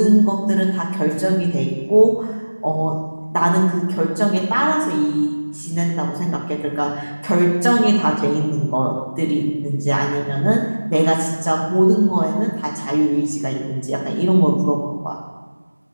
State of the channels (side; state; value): both; inverted; correlation -1.00